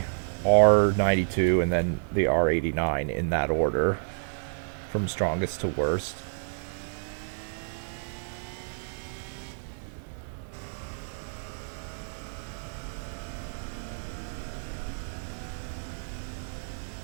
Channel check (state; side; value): silent; left; 58 dB below the other